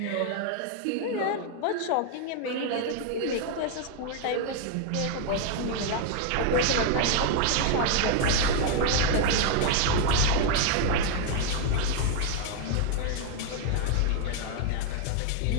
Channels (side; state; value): both; different; correlation 0.00